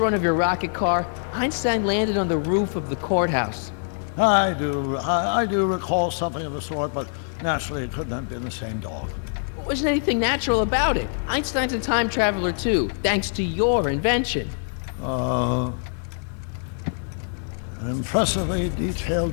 of your rocket car? Einstein landed on the roof of the courthouse. I do recall something of the sort, but naturally it couldn't have been the same dog. There wasn't anything natural about it. Einstein's a time traveler too, thanks to your invention. An impressively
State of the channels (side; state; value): right; silent; digital silence